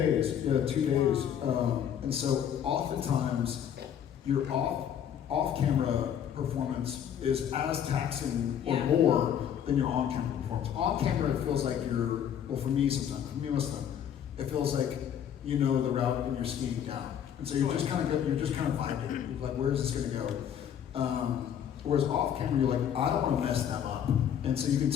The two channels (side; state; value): right; quieter; 9.1 dB